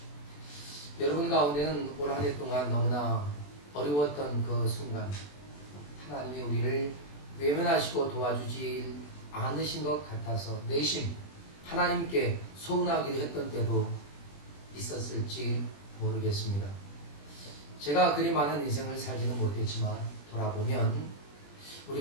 여러분 가운데는 올 한 해 동안 너무나 어려웠던 그 순간 하나님이 우리를 외면하시고 도와주지 않으신 것 같아서 내심 하나님께 서운하기도 했던 때도 있었을지 모르겠습니다. 제가 그리 많은 인생을 살지는 못했지만 돌아보면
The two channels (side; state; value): right; late; 20 ms